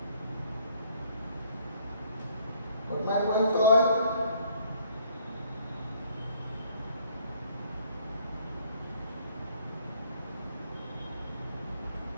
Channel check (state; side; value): inverted; both; correlation -0.61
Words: What my point all?